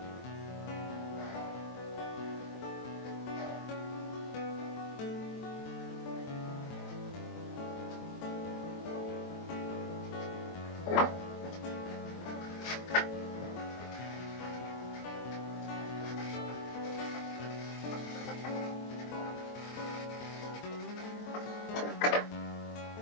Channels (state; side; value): late; right; 23 ms